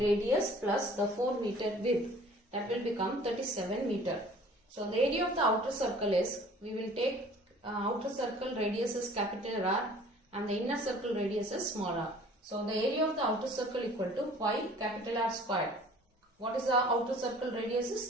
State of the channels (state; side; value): normal; both; correlation 0.50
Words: plus the 4 meter width. That will become 37 meter. So the area of the outer circle is, we will take outer circle radius is capital R and the inner circle radius is small r. So the area of the outer circle equal to pi capital R square. What is the outer circle radius is